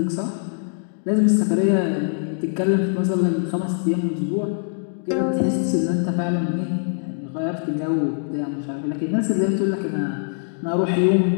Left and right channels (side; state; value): right; silent; digital silence